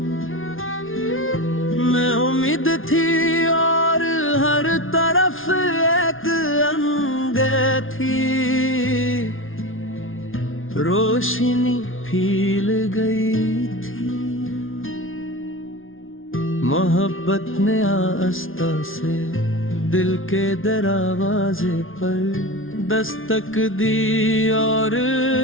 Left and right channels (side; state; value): right; late; 0.59 ms